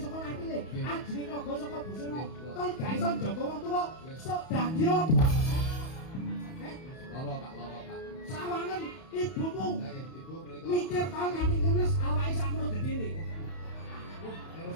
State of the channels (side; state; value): right; late; 31 ms